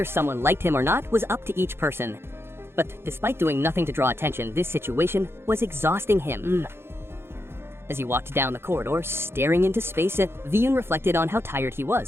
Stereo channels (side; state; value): left; late; 0.12 ms